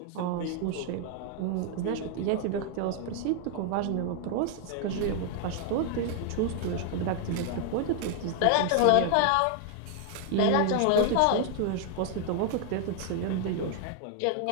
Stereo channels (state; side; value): different; both; correlation 0.00